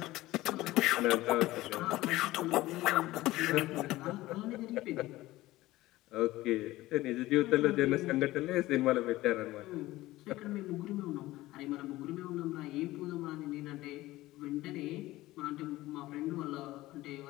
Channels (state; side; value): quieter; right; 17.5 dB